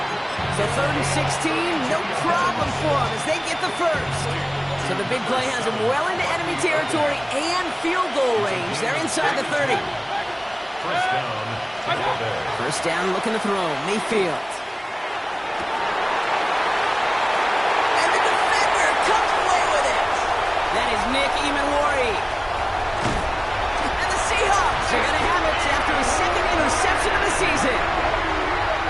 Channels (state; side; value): identical; both; correlation 1.00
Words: So 3rd and 16, no problem for them as they get the first. So the big play has them well into enemy territory and field goal range. They're inside the 30. First down, looking to throw. Mayfield. Nick Emanwari. And the Seahawks are going to have it after his 2nd interception of the season.